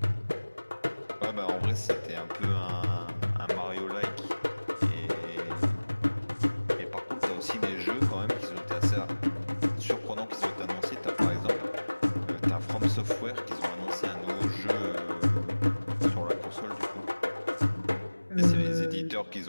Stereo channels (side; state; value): both; inverted; correlation -1.00